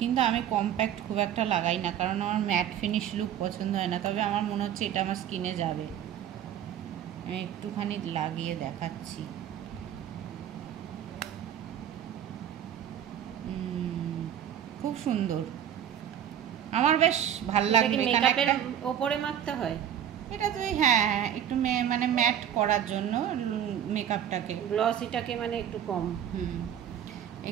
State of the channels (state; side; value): quieter; left; 9.9 dB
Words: আমি কম্প্যাক্ট খুব একটা লাগাই না, কারণ আমার ম্যাট ফিনিশ লুক পছন্দ হয় না। তবে আমার মনে হচ্ছে এটা আমার স্কিনে যাবে, আমি একটুখানি লাগিয়ে দেখাচ্ছি। খুব সুন্দর, আমার বেশ ভাল লাগলো। মেকআপের ওপরে মাখতে হয়? এটা তুই হ্যাঁ হ্যাঁ, একটু মানে ম্যাট করার জন্য মেকআপটাকে, গ্লসিটাকে মানে একটু কম।